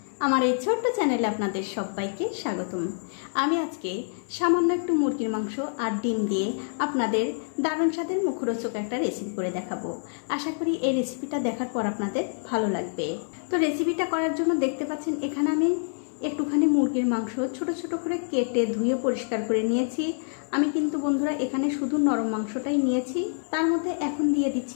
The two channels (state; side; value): silent; right; 60 dB below the other